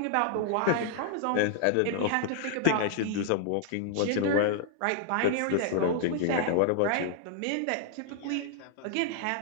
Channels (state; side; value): different; both; correlation 0.00